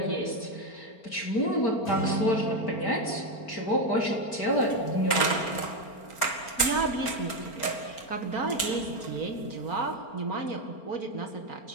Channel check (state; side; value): late; right; 4.4 ms